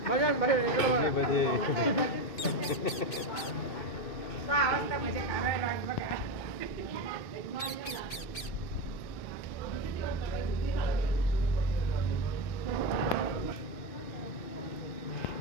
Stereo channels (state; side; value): late; right; 2.3 ms